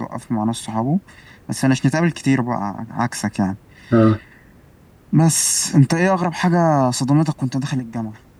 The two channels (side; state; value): both; identical; correlation 1.00